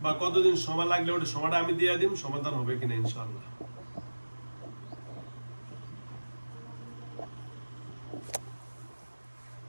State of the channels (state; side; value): inverted; both; correlation -1.00